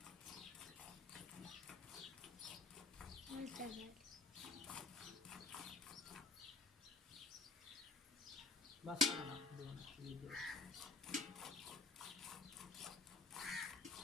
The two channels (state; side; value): quieter; right; 3.6 dB